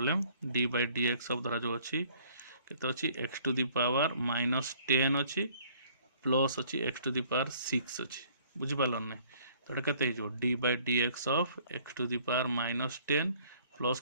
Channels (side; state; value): both; inverted; correlation -0.58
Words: d by dx of धरा जो अछि केते अछि x to the power minus 10 अछि प्लस अछि x टू द पावर 6 अछि बुझि पालन नै तो एटा केते हिजो d by dx of x to the power minus 10 plus